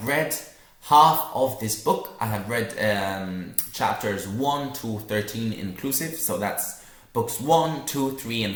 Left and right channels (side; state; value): both; identical; correlation 1.00